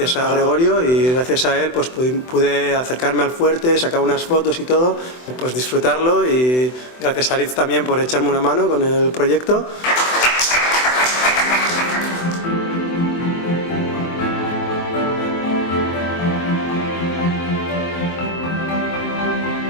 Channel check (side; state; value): right; late; 24 ms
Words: a Gregorio, y gracias a él pues pude acercarme al fuerte, sacar unas fotos y todo, pues disfrutarlo, y gracias a Aritz también por echarme una mano con el proyecto.